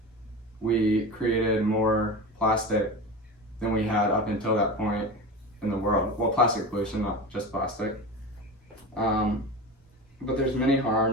we created more plastic than we had up until that point in the world. Well, plastic pollution, not just plastic. But there's many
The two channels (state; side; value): normal; both; correlation 0.28